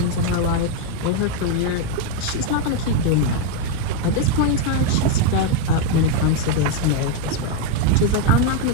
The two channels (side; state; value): both; different; correlation 0.01